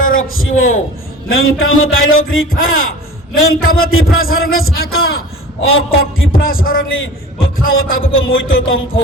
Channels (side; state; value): both; normal; correlation 0.40